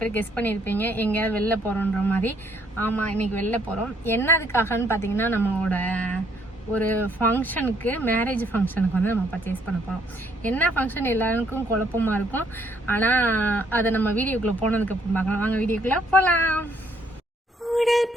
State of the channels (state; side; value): normal; both; correlation 0.68